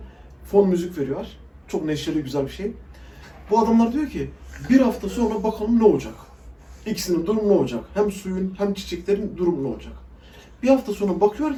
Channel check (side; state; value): both; identical; correlation 1.00